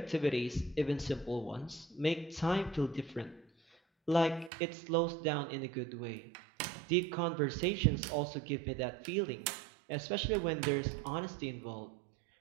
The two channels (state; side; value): drops out; left; at 4.5 s